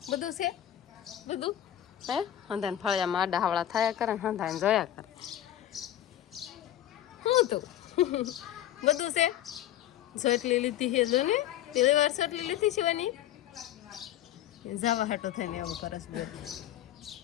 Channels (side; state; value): right; quieter; 12.0 dB